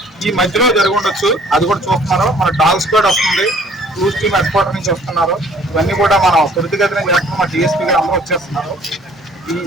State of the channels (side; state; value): both; normal; correlation 0.56